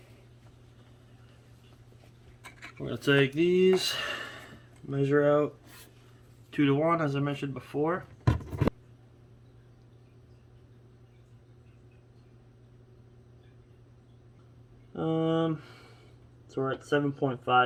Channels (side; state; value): both; identical; correlation 1.00